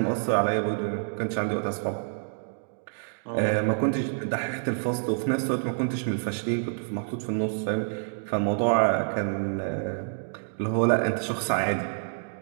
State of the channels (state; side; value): silent; left; digital silence